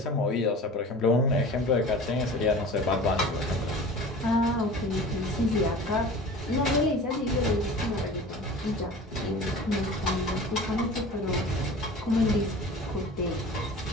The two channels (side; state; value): both; normal; correlation 0.39